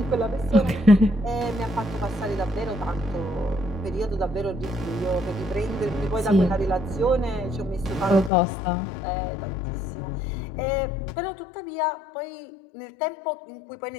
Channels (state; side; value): drops out; right; at 8.3 s